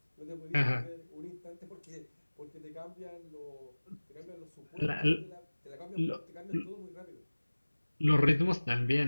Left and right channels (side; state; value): both; inverted; correlation -1.00